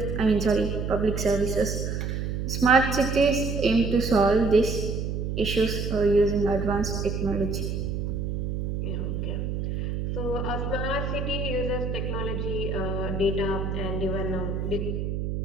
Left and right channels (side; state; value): right; noise; hum, 2 dB below the sound